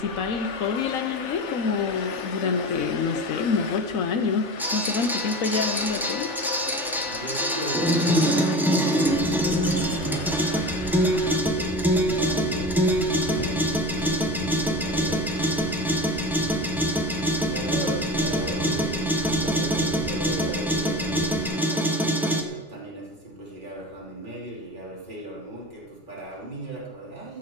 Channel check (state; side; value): normal; both; correlation 0.31